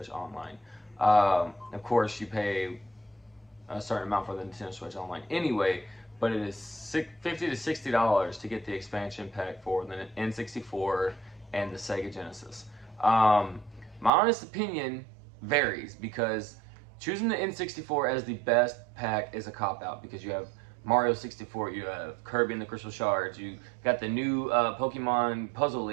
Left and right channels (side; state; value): left; drops out; at 14.1 s